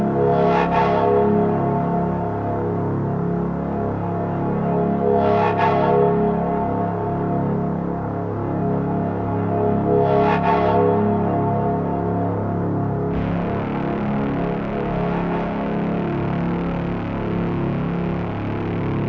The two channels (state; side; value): identical; both; correlation 1.00